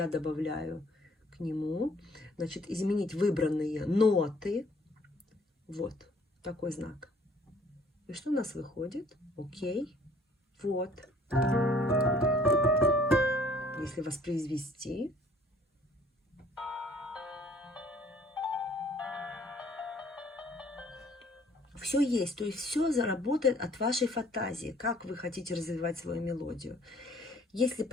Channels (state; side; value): normal; both; correlation 0.58